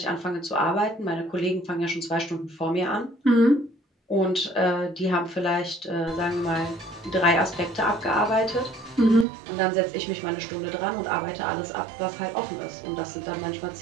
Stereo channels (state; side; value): drops out; left; at 9.2 s